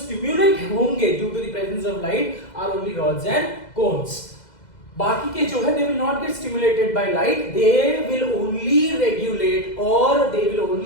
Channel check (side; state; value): right; late; 2.0 ms